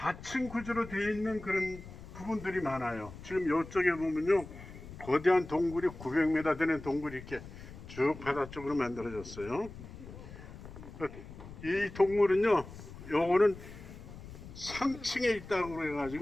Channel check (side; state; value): left; noise; rumble, 14 dB below the sound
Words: 구조로 되어 있는 그런 부분들이 많아요. 지금 이쪽에 보면요 거대한 동굴이 900m 되는 동굴이 이렇게 쭉 바다 쪽으로 만들어졌어요. 이 동굴은요 요거는 상층에 있다고